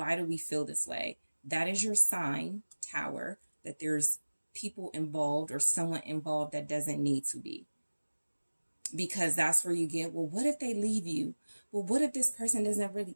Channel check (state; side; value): inverted; both; correlation -1.00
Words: do we feel this way? That is your sign, Tower, that there's people involved or someone involved that doesn't need to be. Because that's where you get, well, what if they leave you? Well, what if this person doesn't really,